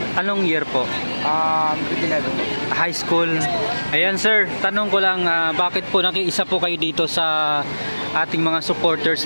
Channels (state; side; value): inverted; both; correlation -1.00